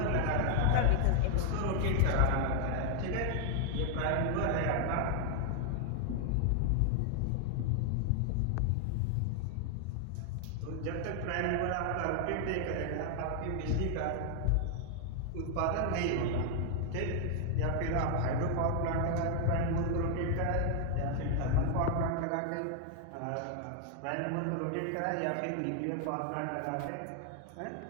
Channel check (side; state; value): both; different; correlation 0.00